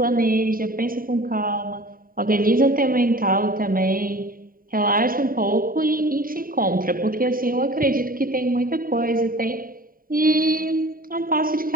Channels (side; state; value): left; late; 0.41 ms